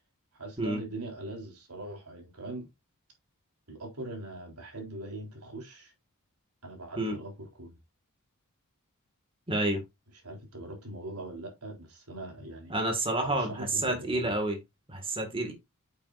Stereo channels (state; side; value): normal; both; correlation 0.28